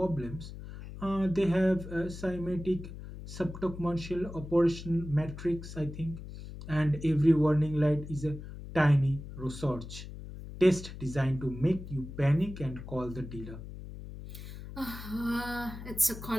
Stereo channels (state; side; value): noise; left; hum, 12 dB below the sound